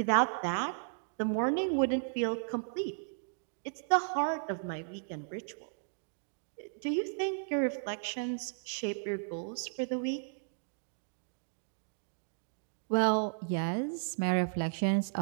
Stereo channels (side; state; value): left; silent; digital silence